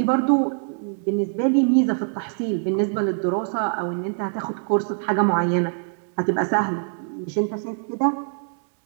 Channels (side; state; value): left; silent; 63 dB below the other